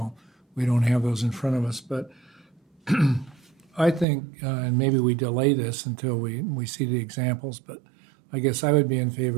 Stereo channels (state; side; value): drops out; left; at 4.0 s